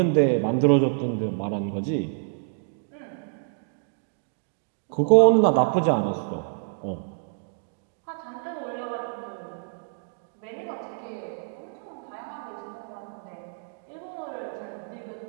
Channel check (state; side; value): silent; left; digital silence